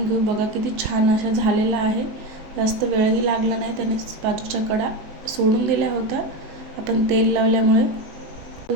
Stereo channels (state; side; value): late; left; 19 ms